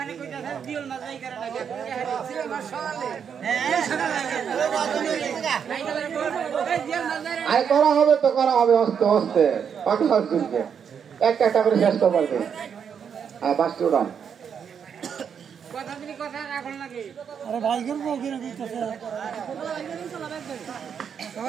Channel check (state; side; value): quieter; left; 7.4 dB